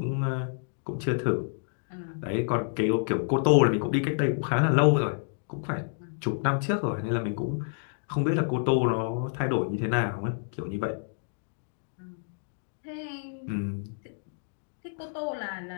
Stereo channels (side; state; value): right; silent; digital silence